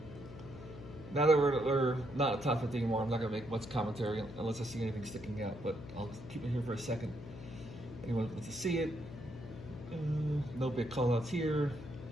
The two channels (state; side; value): noise; left; hum, 13 dB below the sound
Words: Now that we're not at top 50 anymore, I'm not gonna make much commentary unless I see anything sticking out, but I'll keep it here for a second. Anyone wants to see it? No big call outs here.